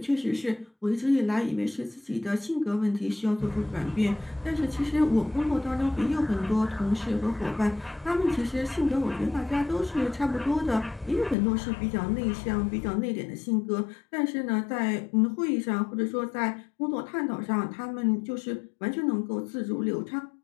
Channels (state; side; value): drops out; right; at 11.4 s